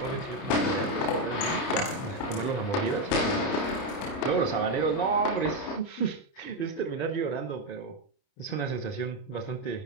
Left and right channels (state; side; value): late; right; 30 ms